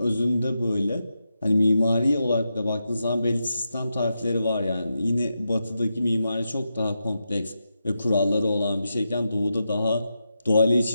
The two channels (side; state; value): both; inverted; correlation -0.87